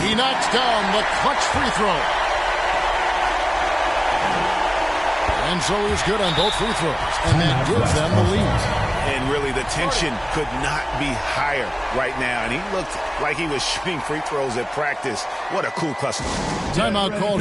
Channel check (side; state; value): both; identical; correlation 1.00